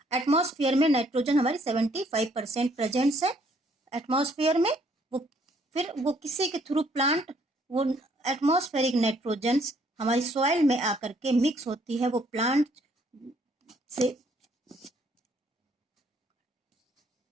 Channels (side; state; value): both; normal; correlation 0.66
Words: एटमॉस्फेयर में नाइट्रोजन हमारी 75% प्रेजेंस है एटमॉस्फेयर में। वो किसी के थ्रू प्लांट, वो एटमॉस्फेरिक नाइट्रोजन हमारी सॉइल में आकर के मिक्स होती है, वो प्लांट से